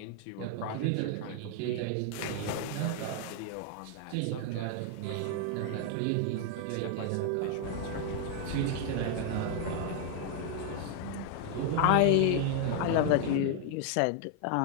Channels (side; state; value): both; different; correlation 0.00